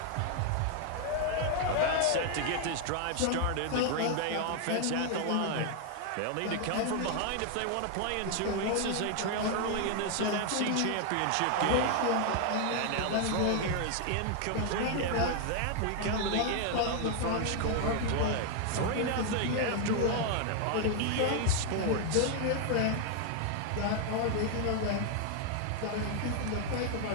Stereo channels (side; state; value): both; different; correlation 0.00